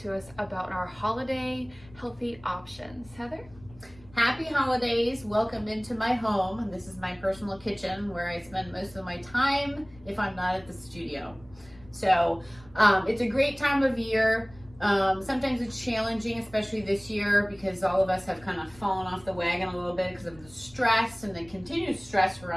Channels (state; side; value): noise; left; rumble, 23 dB below the sound